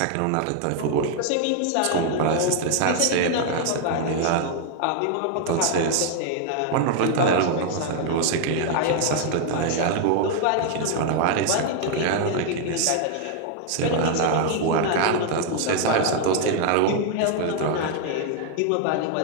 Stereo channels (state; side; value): different; both; correlation 0.00